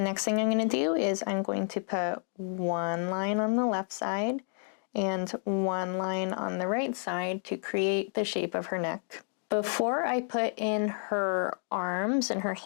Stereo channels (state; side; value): silent; right; 58 dB below the other